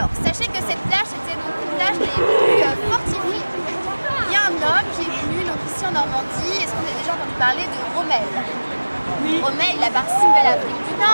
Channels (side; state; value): both; inverted; correlation -1.00